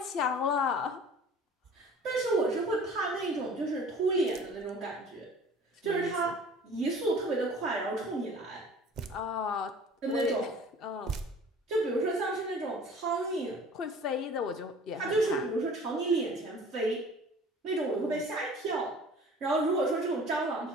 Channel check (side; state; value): both; normal; correlation 0.46